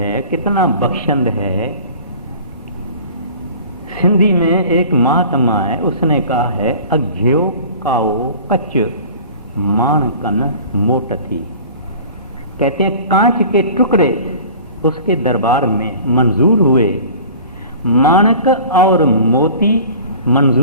कितना बख्शंद है। सिंधी में एक महात्मा है, उसने कहा है अघ्यो काओ कच माणकन मोट थी। कहते हैं कांच के टुकड़े उसके दरबार में मंजूर हुए, माणक और मोती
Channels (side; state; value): both; inverted; correlation -0.43